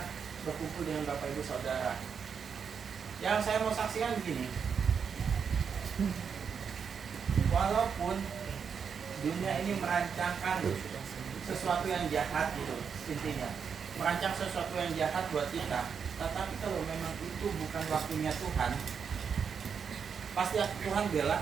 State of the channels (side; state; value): left; quieter; 6.6 dB